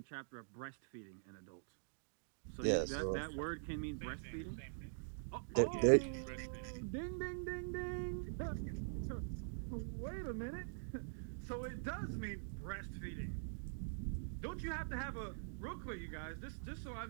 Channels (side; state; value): left; silent; digital silence